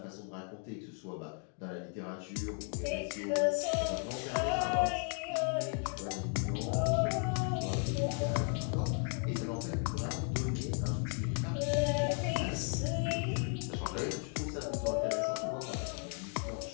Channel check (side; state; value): right; quieter; 36.9 dB